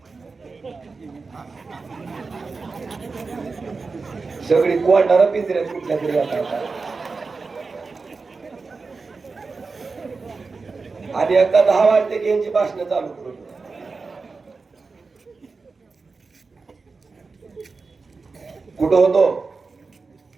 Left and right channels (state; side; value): quieter; left; 4.3 dB